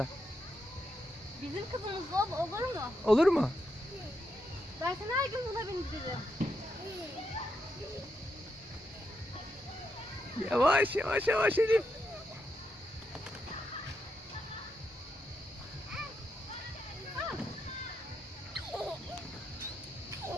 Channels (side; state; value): both; normal; correlation 0.83